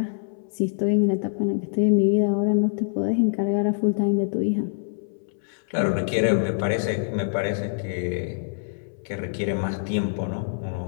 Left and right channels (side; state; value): right; silent; 62 dB below the other